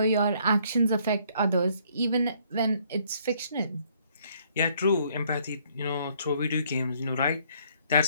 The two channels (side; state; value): both; inverted; correlation -0.65